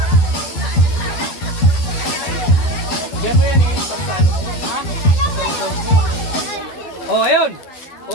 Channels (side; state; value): right; late; 12 ms